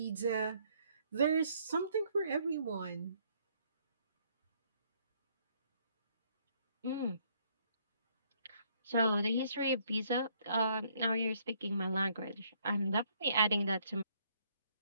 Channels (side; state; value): both; inverted; correlation -0.67